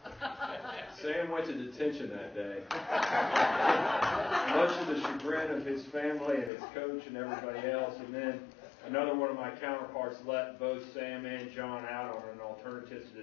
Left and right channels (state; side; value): drops out; right; at 6.5 s